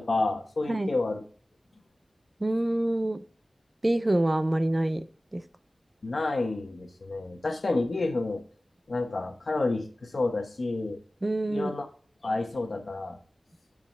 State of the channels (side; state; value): both; normal; correlation 0.96